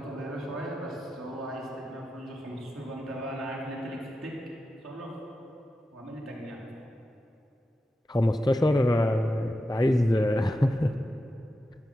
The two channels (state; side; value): normal; both; correlation 0.90